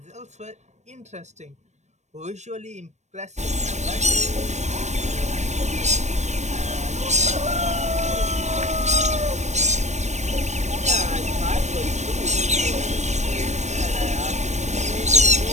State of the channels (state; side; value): late; left; 0.34 ms